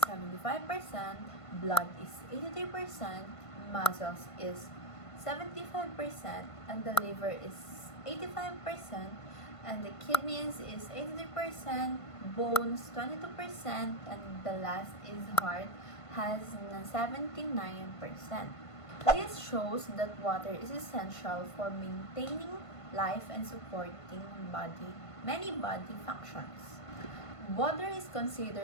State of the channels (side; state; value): right; late; 1.5 ms